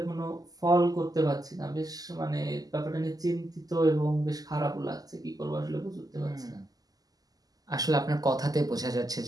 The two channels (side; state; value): left; late; 0.18 ms